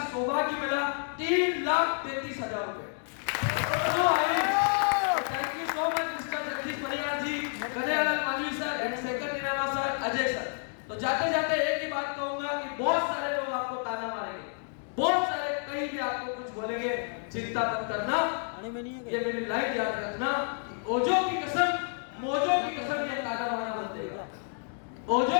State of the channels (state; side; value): silent; right; 58 dB below the other